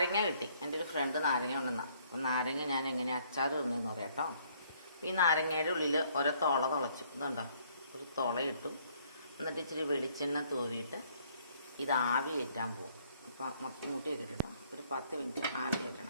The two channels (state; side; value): inverted; both; correlation -0.64